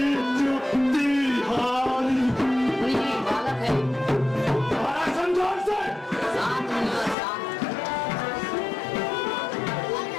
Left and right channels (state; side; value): drops out; right; at 7.2 s